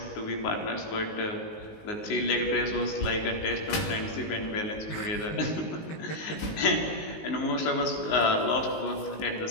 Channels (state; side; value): late; right; 19 ms